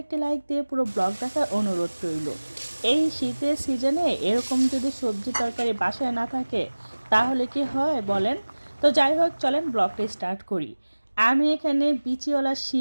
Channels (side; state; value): both; inverted; correlation -1.00